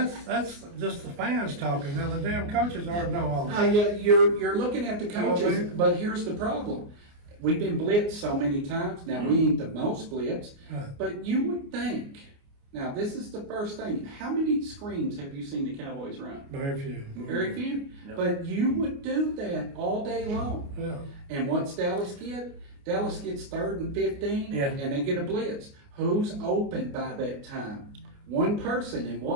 just the fans talking. Now the damn coaches already know all that. Yeah, you're looking at the know, coaches, man. but here's the problem. We've been blitzed so many times. Now, we ain't the most blitzed, Right. but you would think. Now, this is the first thing. How many screens have you seen the Cowboys run? Very few. Very few. No. But you would do that all day long. Yeah. And what's Dallas get? Dallas gets 3rd and 15, Yeah. and they get a blitz. Who's open by that time? One person, and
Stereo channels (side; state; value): left; late; 29 ms